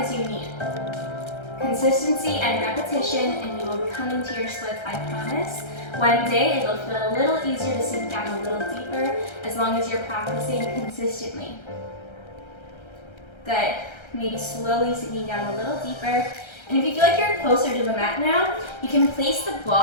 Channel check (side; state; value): right; late; 1.3 ms